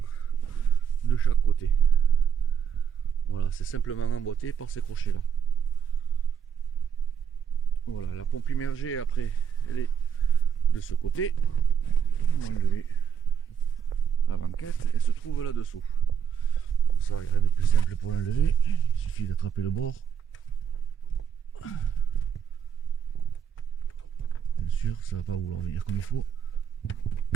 de chaque côté. Voilà, c'est simplement emboîté par ces crochets là. Voilà, la pompe immergée après elle est de ce côté. On va enlever la banquette, elle se trouve là dessous. Pour ça, il n'y a rien de plus simple pour l'enlever, il suffit d'attraper le bord. Bien sûr, ça va pas vouloir venir comme il faut.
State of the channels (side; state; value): left; quieter; 7.8 dB